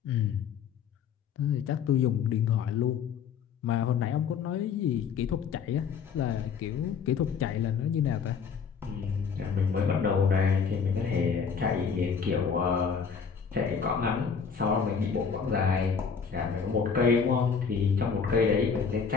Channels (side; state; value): right; quieter; 6.3 dB